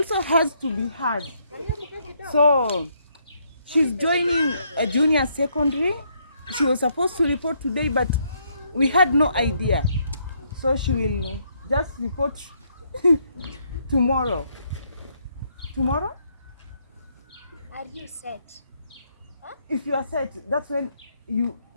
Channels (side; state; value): both; inverted; correlation -0.72